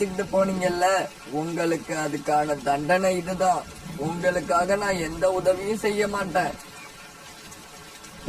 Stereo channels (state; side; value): identical; both; correlation 1.00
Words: போனீங்கல்ல, உங்களுக்கு அதுக்கான தண்டனை இதுதான். உங்களுக்காக நான் எந்த உதவியும் செய்ய மாட்டேன்.